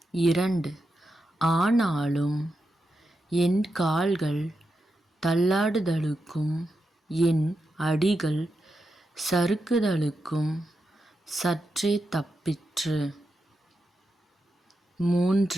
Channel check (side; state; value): both; normal; correlation 0.87